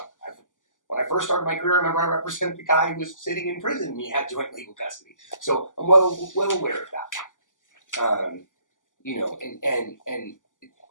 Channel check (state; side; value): late; right; 0.87 ms